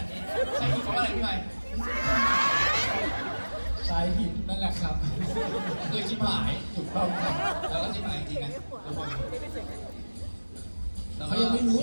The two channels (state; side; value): inverted; both; correlation -1.00